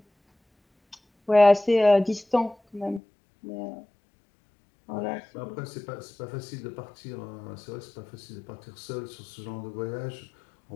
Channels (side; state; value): right; drops out; at 3.0 s